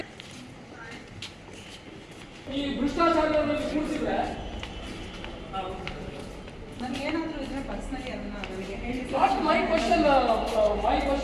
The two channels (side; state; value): both; identical; correlation 1.00